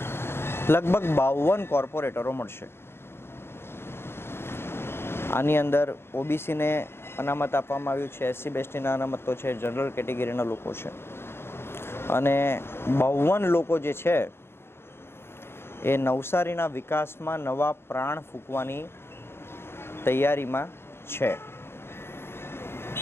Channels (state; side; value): late; right; 0.12 ms